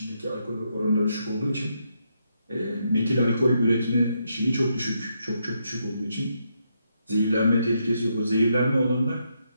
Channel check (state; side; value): inverted; both; correlation -0.79